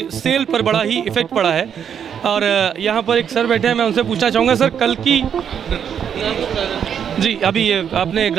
सेल पर बड़ा ही इफ़ेक्ट पड़ा है। और यहाँ पर एक सर बैठे हैं, मैं उनसे पूछना चाहूँगा, सर कल की जी अभी ये अपने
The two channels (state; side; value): quieter; left; 8.2 dB